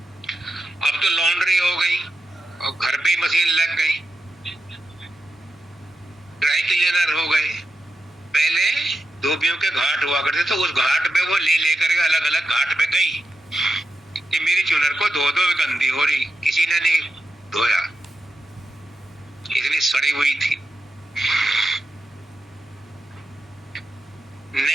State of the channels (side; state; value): both; normal; correlation 0.89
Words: अब तो लॉन्ड्री हो गई और घर पे ही मशीन लग गई, ड्राई क्लीनर हो गए। पहले धोबियों के घाट हुआ करते थे, उस घाट पे वो ले लेकर के अलग अलग घाट पे गई कि मेरी चुनर को धो दो, गंदी हो रही। किसी ने नहीं धोया, इतनी सड़ी हुई थी।